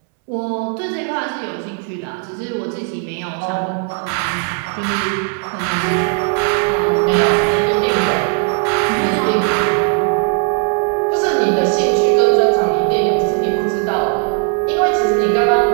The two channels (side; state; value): left; quieter; 39.6 dB